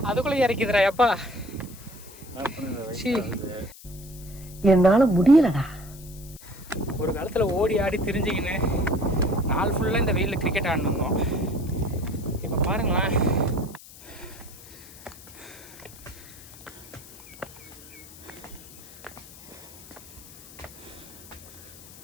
அதுக்குள்ளே இறக்கிதுரா எப்பா. என்னால முடியலடா. ஒரு காலத்தில் ஓடி ஆடி திரிஞ்சிக்கின்னு நாள் ஃபுல்லாக இந்த வெயிலில் கிரிக்கெட் ஆடினோம். இப்போ பாருங்களேன்,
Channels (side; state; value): left; noise; hiss, 19 dB below the sound